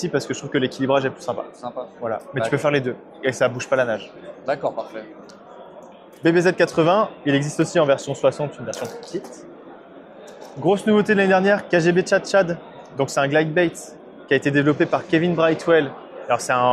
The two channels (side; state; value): both; identical; correlation 1.00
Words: parce que je trouve que l'équilibrage est plus sympa. Voilà. Mais tu peux faire les deux et ça bouge pas la nage. D'accord, parfait. BBZ 80, il existe aussi en version 60, une version plus petite. Grosse nouveauté de l'année dernière, KGB Chad Chad. Donc c'est un glide bait qui a été développé par Kevin Brightwell. Alors c'est